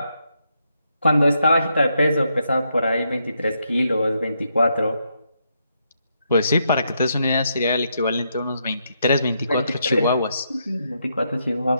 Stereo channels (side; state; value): both; inverted; correlation -0.79